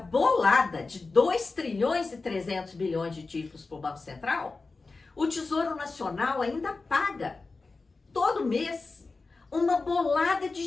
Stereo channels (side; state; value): right; quieter; 3.9 dB